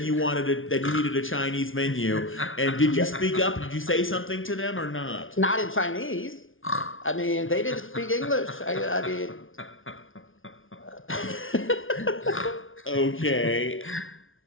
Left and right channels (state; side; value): late; right; 0.58 ms